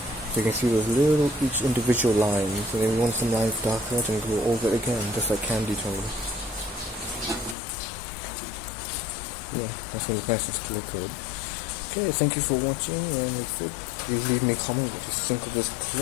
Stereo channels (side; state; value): right; drops out; at 7.6 s